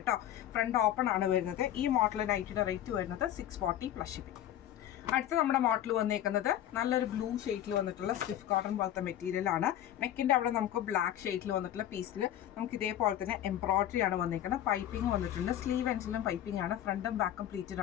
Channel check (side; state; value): right; quieter; 11.7 dB